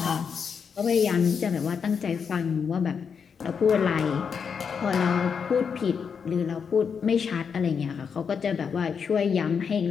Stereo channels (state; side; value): quieter; right; 6.4 dB